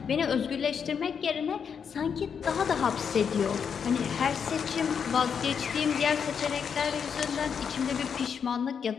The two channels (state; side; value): quieter; right; 6.9 dB